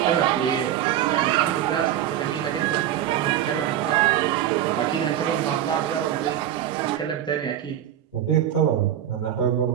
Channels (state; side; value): quieter; left; 11.1 dB